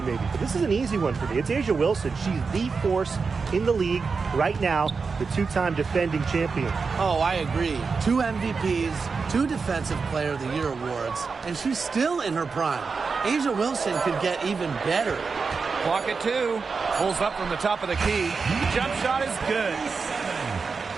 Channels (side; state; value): left; quieter; 4.9 dB